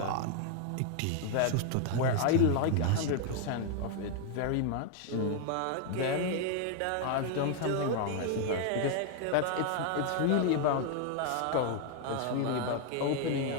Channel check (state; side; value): different; both; correlation 0.00